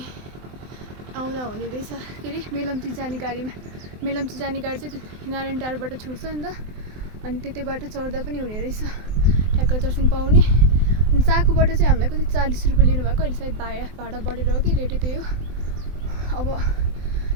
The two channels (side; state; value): left; late; 23 ms